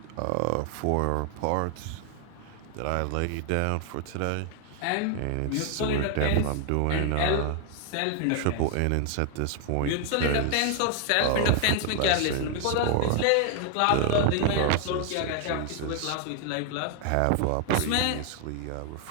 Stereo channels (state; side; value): different; both; correlation 0.00